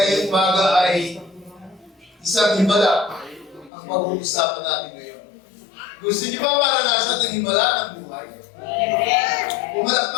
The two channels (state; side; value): drops out; right; at 3.7 s